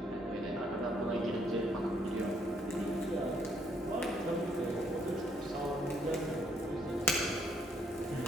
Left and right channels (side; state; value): both; normal; correlation 0.70